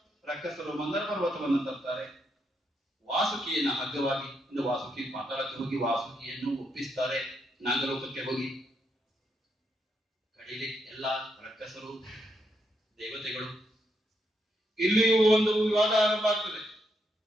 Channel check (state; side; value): normal; both; correlation 0.79